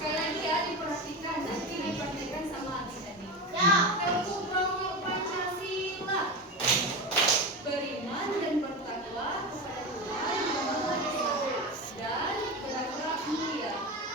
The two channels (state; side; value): normal; both; correlation 0.22